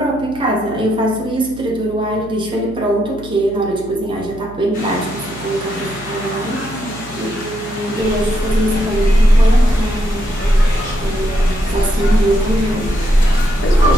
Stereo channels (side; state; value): right; noise; hum, 18 dB below the sound